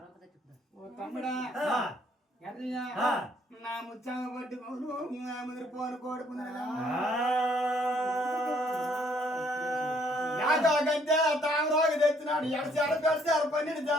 ఓ తమ్ముడా ఎర్రయ్యా నా ముచ్చామ పట్టుకోను ముదిరిపోను కోడుకున్నా గంటే తామరాకు తెచ్చినాడు 7 చాల పెడతారు 12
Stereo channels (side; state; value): both; normal; correlation 0.65